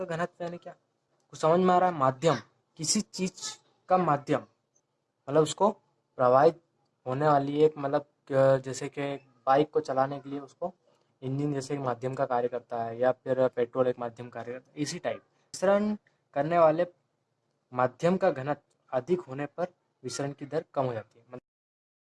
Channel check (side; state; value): both; identical; correlation 1.00